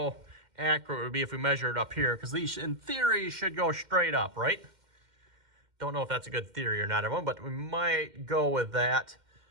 accurate it would be if we measure it up here, because these in theory should go straight up, right? Don't know if that's a good theory or not, everyone, but we might go with that.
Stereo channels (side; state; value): left; late; 2.1 ms